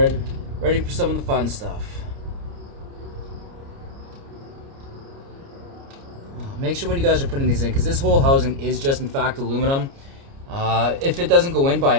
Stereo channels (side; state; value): left; late; 29 ms